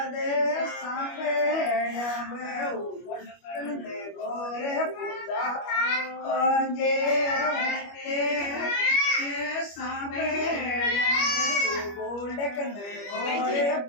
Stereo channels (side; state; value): right; late; 25 ms